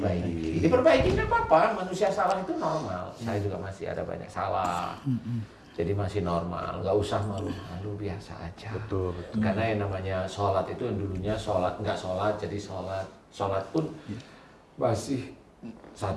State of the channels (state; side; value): identical; both; correlation 1.00